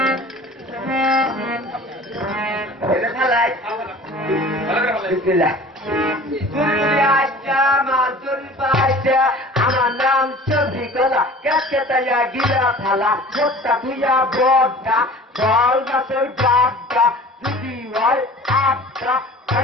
আমার নাম চৌধুরী গলা কেতাইয়া গিরা থালা ভোটটা তুইয়া বড়টা জল গাছের বাগটা যদি হয় আটটা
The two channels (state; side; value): normal; both; correlation 0.43